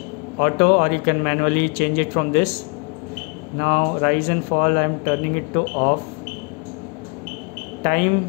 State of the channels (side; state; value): right; quieter; 31.5 dB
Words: auto, or you can manually change it from this. Now rise and fall I am turning it to off.